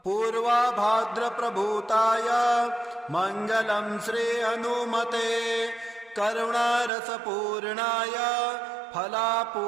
पूर्वाभाद्र प्रभूताय मंगलं श्री हनुमते करुणारसपूर्णाय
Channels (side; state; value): left; drops out; at 6.9 s